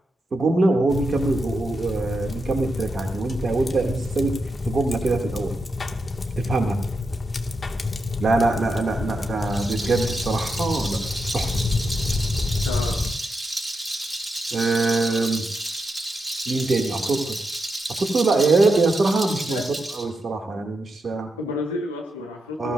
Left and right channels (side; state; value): both; normal; correlation 0.86